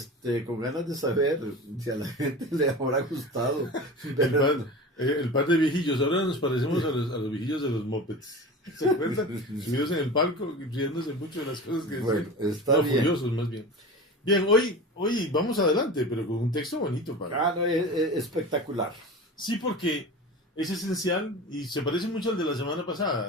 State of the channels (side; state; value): both; normal; correlation 0.32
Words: con ganas de saber si a la gente le habrá gustado. El par de viejillos, ahora nos parecemos a los viejillos de los mopeds. ¿Se acuerdan? Subidos en el palco, riéndose mucho de las cosas que bueno, decían. está bien. Furiosos, más bien. Bien, hoy vamos adelante, pero con un texto bonito, padre. No, es espectacular. Sí, porque es esencial y se parece mucho al de la semana